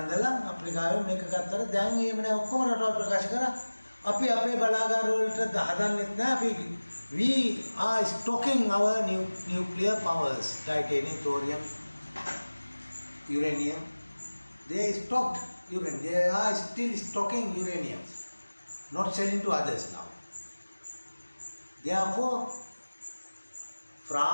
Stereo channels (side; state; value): both; inverted; correlation -1.00